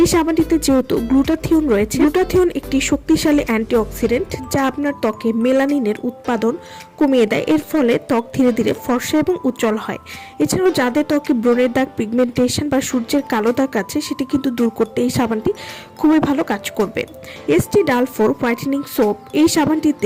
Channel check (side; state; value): both; identical; correlation 1.00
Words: সাবানটিতে যেহেতু গ্লুটাথিয়ন রয়েছে, গ্লুটাথিয়ন একটি শক্তিশালী অ্যান্টিঅক্সিডেন্ট যা আপনার ত্বকে মেলানিনের উৎপাদন কমিয়ে দেয়। এর ফলে ত্বক ধীরে ধীরে ফর্সা এবং উজ্জ্বল হয়। এছাড়াও যাদের ত্বকে ব্রণের দাগ, পিগমেন্টেশন বা সূর্যের কালো দাগ আছে, সেটি কিন্তু দূর করতে এই সাবানটি খুবই ভালো কাজ করবে। এসটি ডাল4 হোয়াইটেনিং সোপ, এই